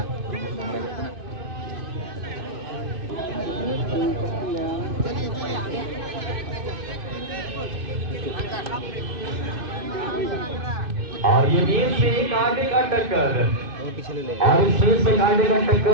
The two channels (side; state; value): left; late; 2.5 ms